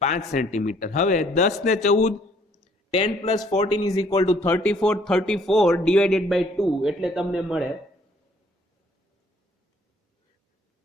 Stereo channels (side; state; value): both; normal; correlation 0.62